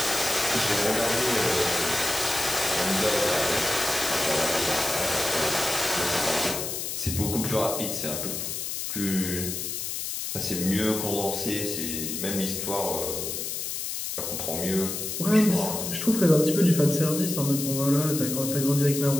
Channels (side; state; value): left; noise; hiss, 4 dB below the sound